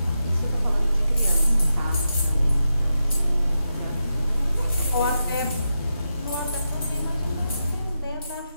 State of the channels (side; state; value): both; inverted; correlation -0.88